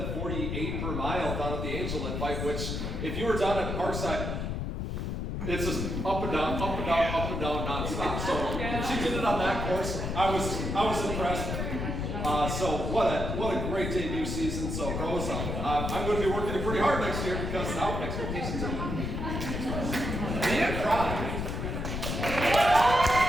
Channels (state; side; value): noise; left; rumble, 3 dB below the sound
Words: per mile down at the Angel Invite, which, if you were down at Parkside, it's just up and down, up and down, up and down, nonstop. So she did it on that course. I was impressed. So what a great debut season. So Rose, I'm going to be working pretty hard next year because now expectations are man cry.